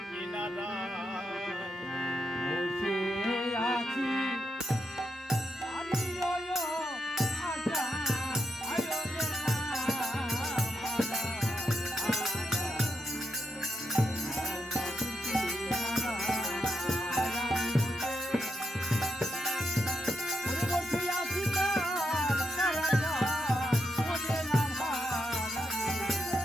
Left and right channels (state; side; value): normal; both; correlation 0.82